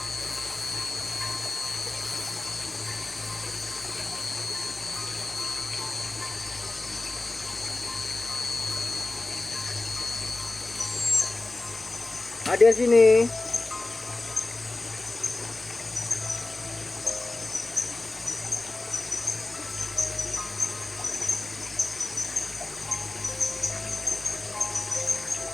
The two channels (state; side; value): quieter; right; 3.0 dB